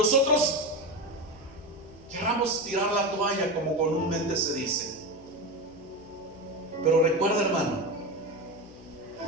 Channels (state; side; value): noise; left; hum, 22 dB below the sound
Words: querramos tirar la toalla, como comúnmente se dice. Pero recuerda, hermano,